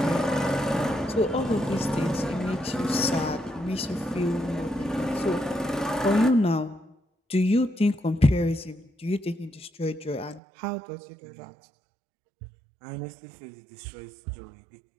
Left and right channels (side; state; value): left; drops out; at 10.4 s